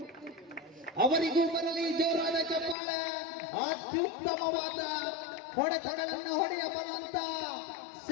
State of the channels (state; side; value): drops out; right; at 2.8 s